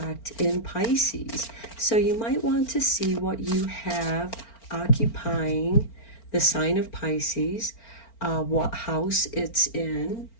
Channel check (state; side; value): late; right; 4.4 ms